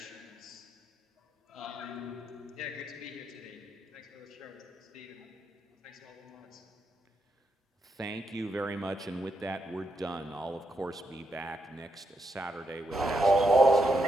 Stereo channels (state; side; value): normal; both; correlation 0.81